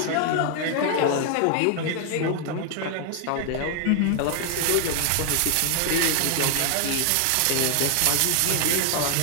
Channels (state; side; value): different; both; correlation 0.00